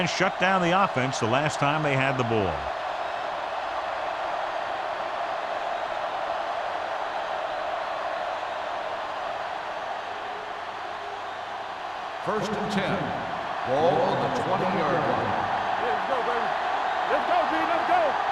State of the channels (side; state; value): both; identical; correlation 1.00